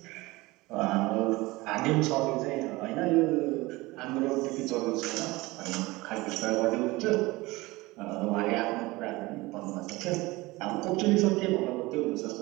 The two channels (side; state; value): left; quieter; 21.3 dB